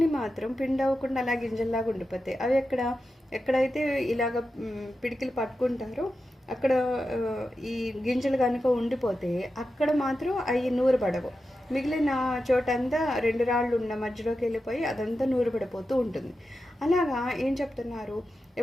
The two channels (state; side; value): normal; both; correlation 0.91